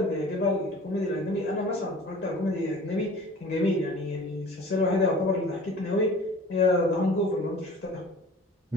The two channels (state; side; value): normal; both; correlation 0.44